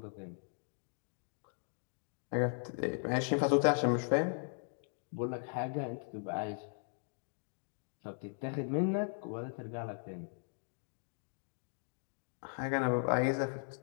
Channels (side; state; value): right; silent; digital silence